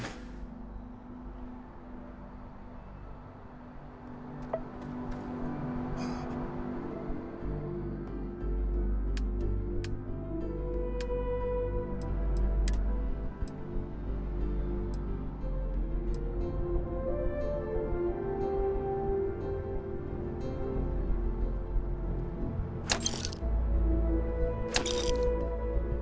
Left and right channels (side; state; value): both; identical; correlation 1.00